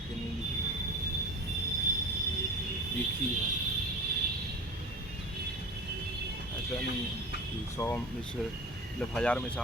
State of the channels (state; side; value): normal; both; correlation 0.34